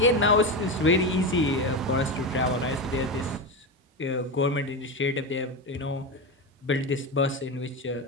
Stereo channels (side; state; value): both; normal; correlation 0.17